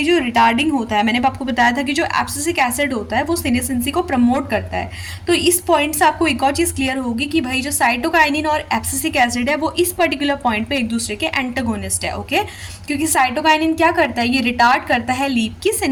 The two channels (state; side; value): identical; both; correlation 1.00